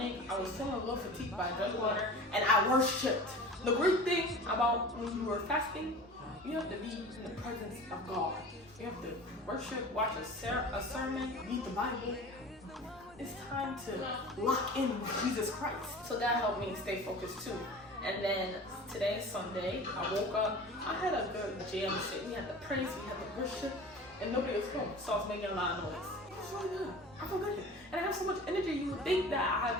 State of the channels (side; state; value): both; normal; correlation 0.38